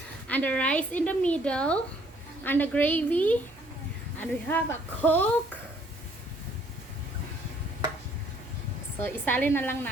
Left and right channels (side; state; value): both; normal; correlation 0.63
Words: and the rice in the middle and the gravy. And we have a Coke. So, isalin na lang